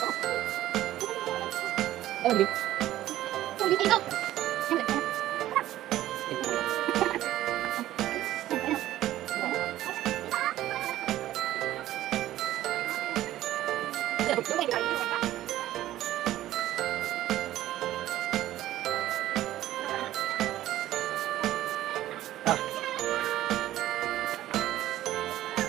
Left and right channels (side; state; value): left; quieter; 14.0 dB